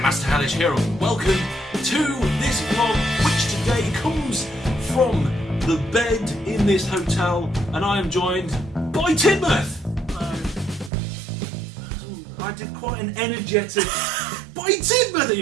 Hellish here, and welcome to this vlog, which today comes from the bed in this hotel, and I am joined by Tidmouth. I did quite an energetic by Tidmouth.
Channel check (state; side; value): drops out; left; at 10.9 s